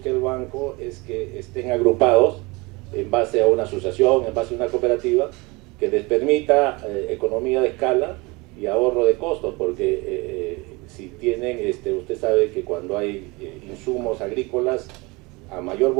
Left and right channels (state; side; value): quieter; left; 25.1 dB